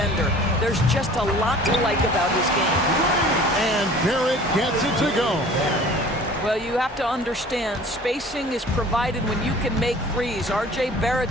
There's just a lot to like about his game. And Barrett gets it to go. Well, you have to understand, spacing is provided when you can make threes. R.J.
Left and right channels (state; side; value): normal; both; correlation 0.47